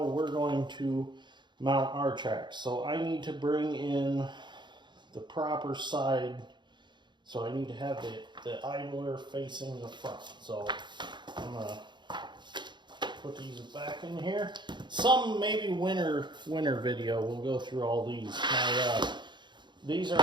we're going to mount our tracks. So I need to bring in the proper side. So I need to have the idler facing the front. So I'm going to put these back in here. Some maybe winter video. We'll go through all these. These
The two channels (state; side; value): late; left; 0.22 ms